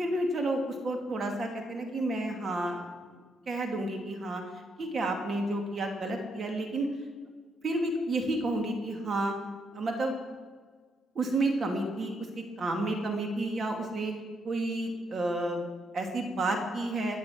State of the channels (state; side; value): normal; both; correlation 0.77